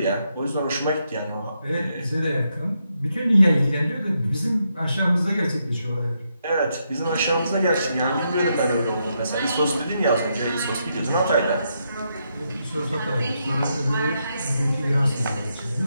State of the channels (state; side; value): inverted; both; correlation -0.80